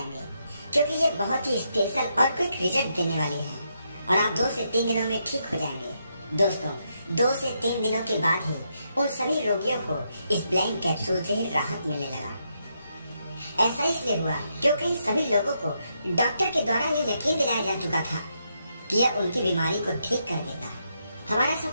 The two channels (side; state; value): both; inverted; correlation -0.80